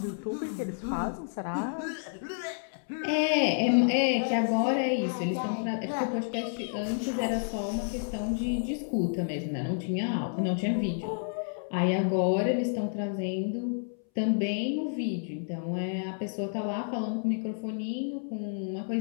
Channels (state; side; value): silent; right; 58 dB below the other